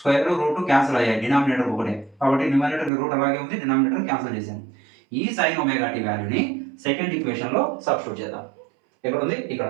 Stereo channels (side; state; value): left; drops out; at 2.9 s